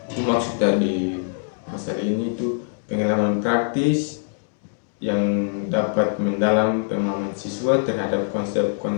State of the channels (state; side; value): silent; right; digital silence